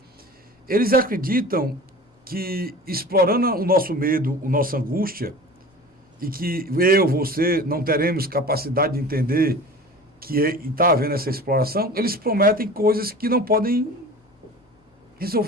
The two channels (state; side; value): normal; both; correlation 0.38